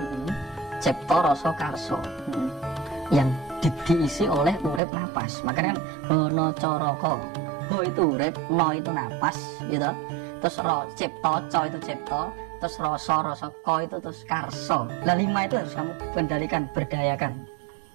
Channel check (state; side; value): drops out; left; at 4.8 s